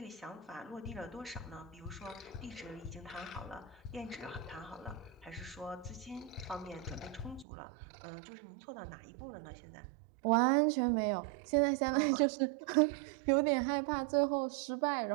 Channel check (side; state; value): left; drops out; at 7.5 s